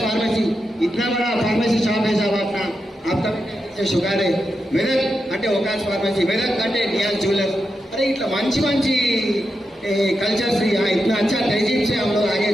फार्मेसी इतना बड़ा फार्मेसी शॉप है साहब अपना. आप तब शुगर है मेदक అంటే ओकास फार्मेसी, मेदक అంటే नियाज ज्वेलर्स. अरे इतना మంచి మంచి కల్చర్స్ इतना अच्छा तहजीब से हम लोग आगे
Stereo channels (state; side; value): normal; both; correlation 0.87